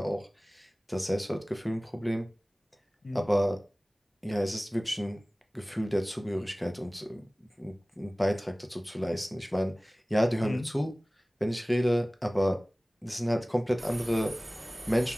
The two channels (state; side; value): normal; both; correlation 0.98